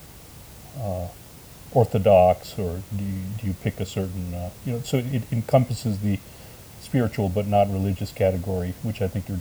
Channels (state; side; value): identical; both; correlation 1.00